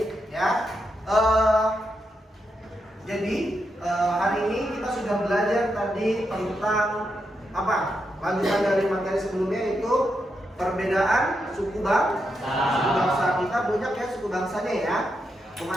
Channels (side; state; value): both; normal; correlation 0.84